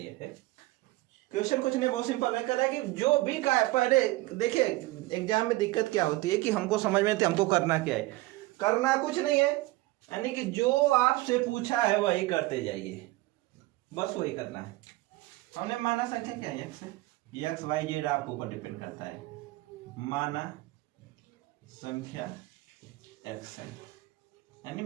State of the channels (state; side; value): quieter; left; 19.5 dB